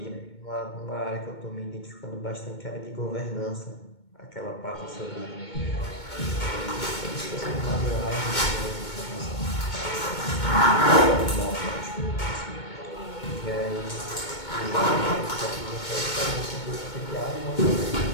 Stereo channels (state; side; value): late; right; 2.2 ms